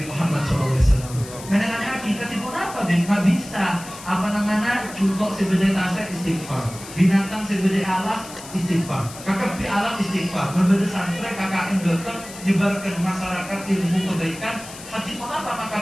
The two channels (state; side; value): noise; left; hiss, 15 dB below the sound